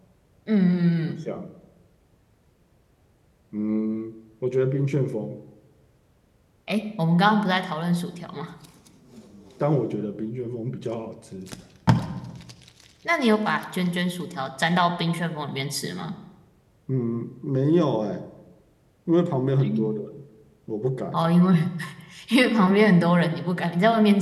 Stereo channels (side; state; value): both; identical; correlation 1.00